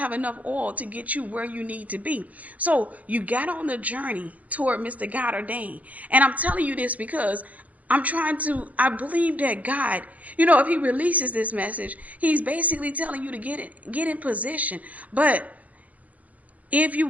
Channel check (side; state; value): left; late; 0.072 ms